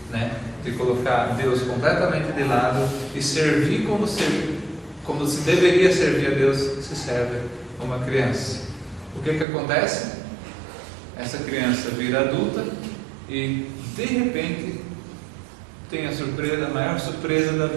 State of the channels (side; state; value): left; drops out; at 9.5 s